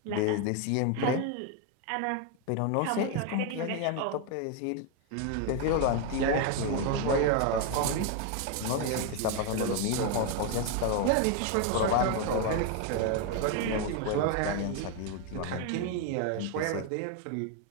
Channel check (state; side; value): different; both; correlation 0.01